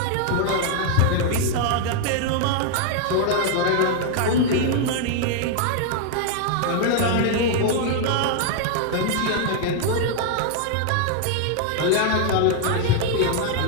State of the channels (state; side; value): different; both; correlation 0.00